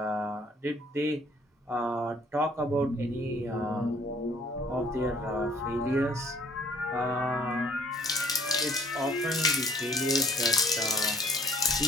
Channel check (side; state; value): both; normal; correlation 0.58